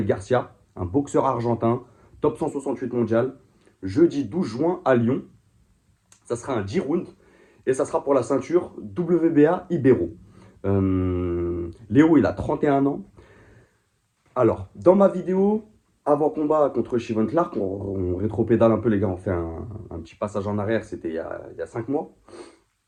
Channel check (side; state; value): both; identical; correlation 1.00